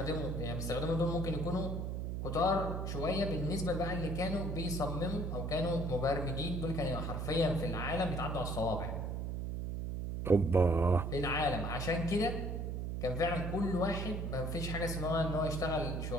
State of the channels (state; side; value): noise; right; hum, 3 dB below the sound